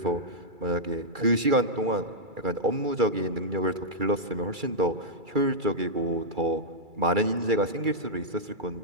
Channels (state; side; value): late; left; 2.3 ms